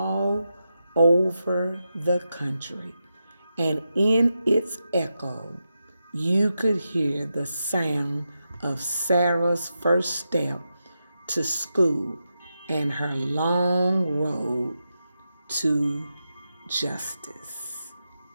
over the country. And in its echo, you could hear the sound of Sarah's first step to school and her long road to justice.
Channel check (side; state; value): both; inverted; correlation -0.88